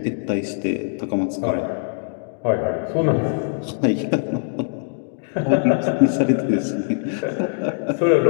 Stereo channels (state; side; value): silent; right; digital silence